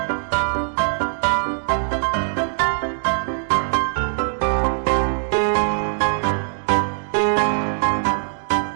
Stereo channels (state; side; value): silent; left; digital silence